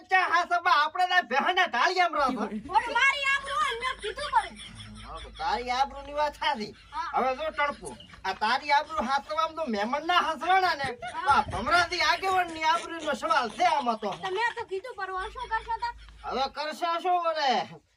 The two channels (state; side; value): identical; both; correlation 1.00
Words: ચા હા સબા આપણે ના ભેના ટાળિયામ રહો. ઓર મારી આબરૂ ને મેં કીધું પડે. તારી આબરૂ ની વાત થાતી. હવે જો ટણપુ આ તારી આબરૂ હાસવામ તો મહેમાન ના હાસવાના ને આ ભમરાથી આગેવાન ની આબરૂ નો સવાલ છે આમાં તો. તમે તો કીધું પરવા શું કરશો તા? હવે કરશે શું કરે